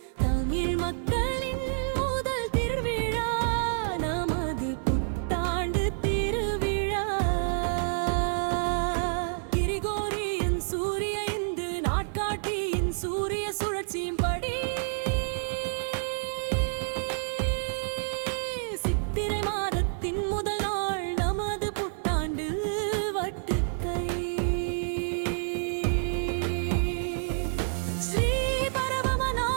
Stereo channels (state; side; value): silent; left; 59 dB below the other